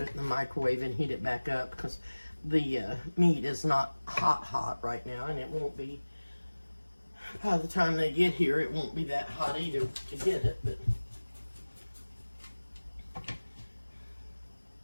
in the microwave and heat it back up, because the meat is not hot right now, and it won't be, by the time they get here, it won't be that hot either to get it, but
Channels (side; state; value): both; inverted; correlation -1.00